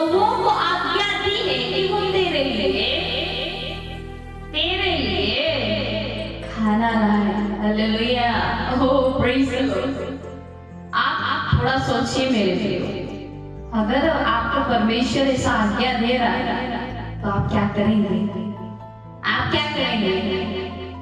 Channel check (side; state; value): both; identical; correlation 1.00